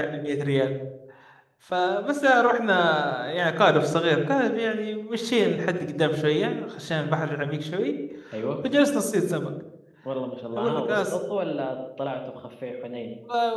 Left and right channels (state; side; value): identical; both; correlation 1.00